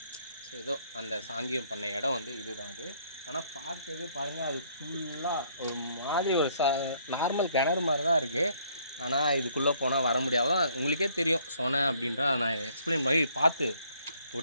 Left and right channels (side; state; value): both; inverted; correlation -0.64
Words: ஏதோ அந்த சாங்கியம் பண்ண இடம் வந்து இதுதான் அது. ஆனால் பார்க்கவே பாருங்கள் அது ஃபுல்லாக ஒரு மாதிரி ஒரு நார்மல் கிணறு மாதிரி தான் இருக்குது. ஆனால் இதுக்குள்ளே போனால் வர முடியாது. உங்களுக்கே தெரியும் சொன்னேன் அப்படின்றா நான் எக்ஸ்பிளைன் பண்ணி பார்த்து